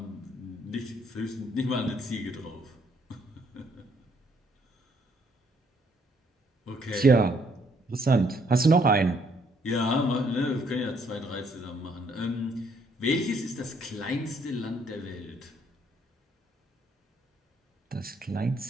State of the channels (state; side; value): normal; both; correlation 0.68